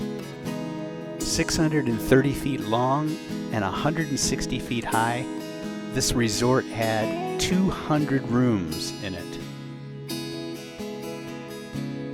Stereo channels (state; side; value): identical; both; correlation 1.00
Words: 630 feet long and 160 feet high, this resort had 200 rooms in it.